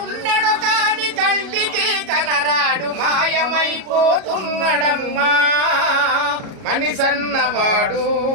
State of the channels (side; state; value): left; late; 37 ms